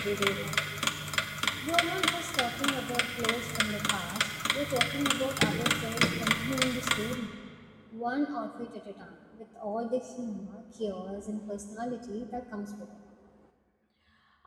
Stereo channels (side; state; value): both; identical; correlation 1.00